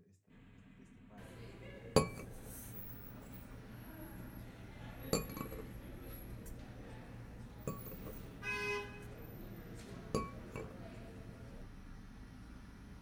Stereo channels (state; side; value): identical; both; correlation 1.00